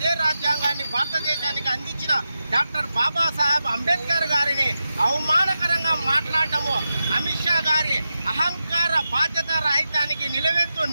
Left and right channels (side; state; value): both; inverted; correlation -0.90